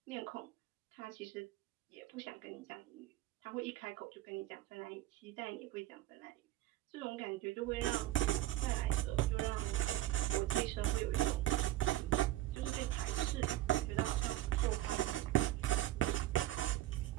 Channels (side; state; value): left; quieter; 15.0 dB